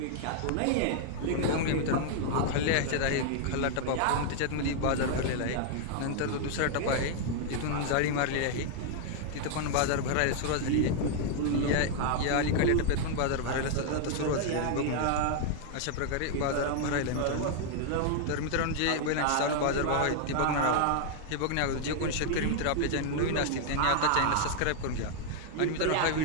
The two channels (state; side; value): different; both; correlation 0.00